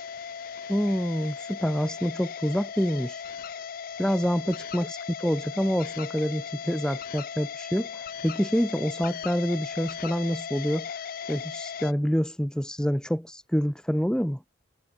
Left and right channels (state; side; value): normal; both; correlation 0.89